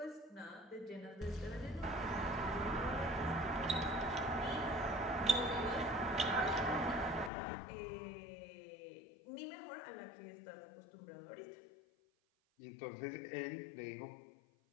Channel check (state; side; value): drops out; right; at 7.3 s